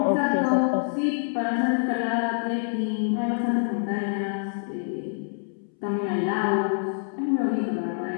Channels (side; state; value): right; silent; 61 dB below the other